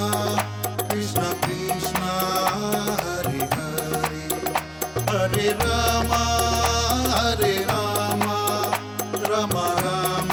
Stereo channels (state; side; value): identical; both; correlation 1.00